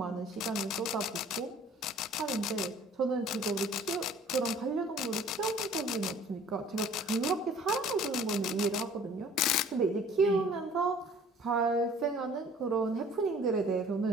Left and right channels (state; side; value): normal; both; correlation 0.52